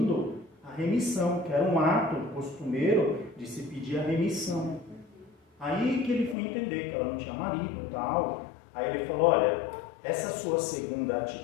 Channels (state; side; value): drops out; right; at 6.4 s